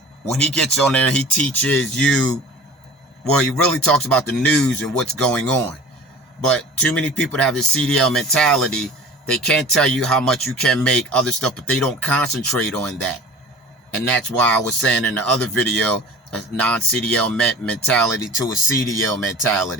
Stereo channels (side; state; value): both; normal; correlation 0.41